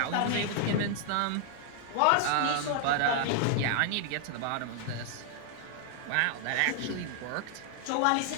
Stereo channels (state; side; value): different; both; correlation 0.00